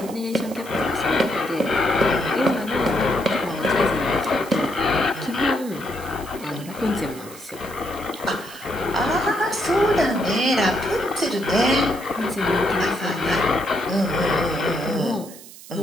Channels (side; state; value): right; noise; hiss, 17 dB below the sound